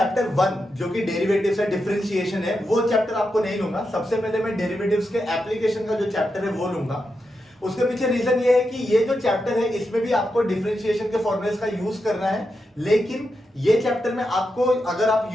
1 जो कि डेरिवेटिव्स है, डिफरेंशिएशन है, वो चैप्टर आपको नहीं लूंगा। सबसे पहले मैं डेरिवेटिव्स के एप्लीकेशन का जो चैप्टर है वो लूंगा। उसके पीछे रीजन ये है कि ये जो चैप्टर है इसमें भी आपको डिफरेंशिएशन के फॉर्मूलेस का यूज करना है, लेकिन ये चैप्टर में आपको अगर आप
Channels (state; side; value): normal; both; correlation 0.86